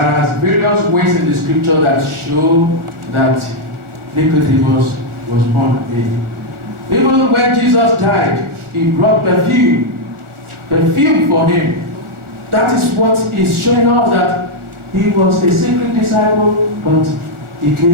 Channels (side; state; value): left; late; 1.4 ms